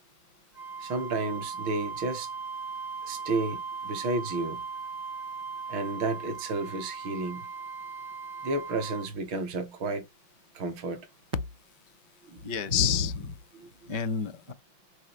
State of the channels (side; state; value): left; late; 5.8 ms